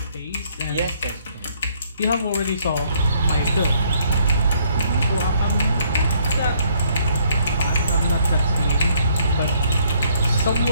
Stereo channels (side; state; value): both; inverted; correlation -0.66